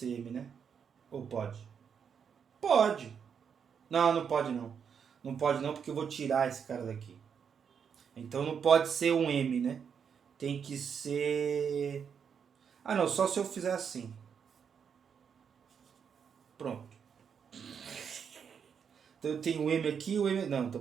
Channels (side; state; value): left; quieter; 7.1 dB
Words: M, né? Ou pode? Pode. Não, não pode não. Não pode não, porque eu vou tirar esse cara daqui. Então não pode ser um M, né? Tem que ser... Ah, não. Só se eu fizer assim. Pronto. Então eu tenho o M aqui e o M... Não, tô